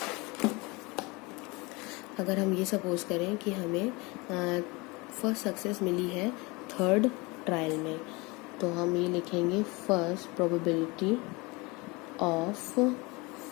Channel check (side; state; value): right; quieter; 25.6 dB